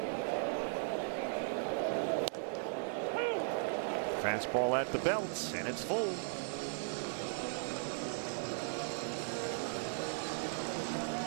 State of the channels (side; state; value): left; silent; 53 dB below the other